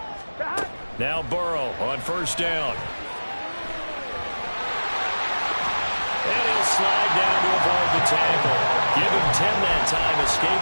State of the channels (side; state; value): both; inverted; correlation -1.00